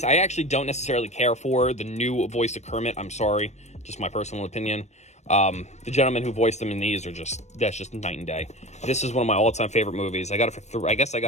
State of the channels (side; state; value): right; late; 0.33 ms